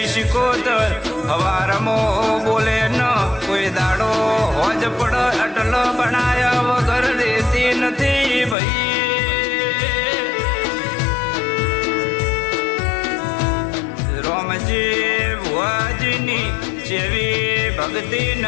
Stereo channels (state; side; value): drops out; right; at 8.6 s